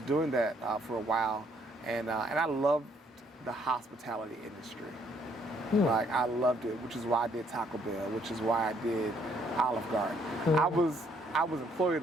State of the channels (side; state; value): both; normal; correlation 0.68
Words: doing that for a while, and I loved the hospitality industry. Like, I loved it, which is why I did Taco Bell, which is why I did Olive Garden. I was employee of